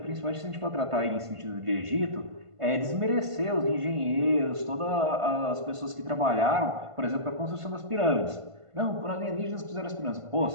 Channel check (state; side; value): late; left; 1.5 ms